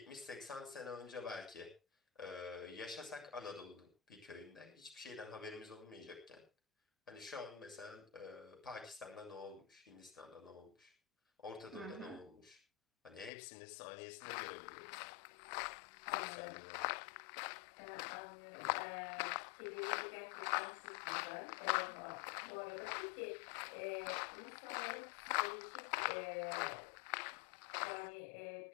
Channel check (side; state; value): right; drops out; at 13.3 s